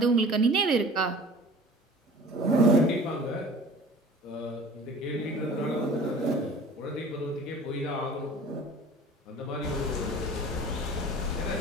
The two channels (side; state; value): both; normal; correlation 0.44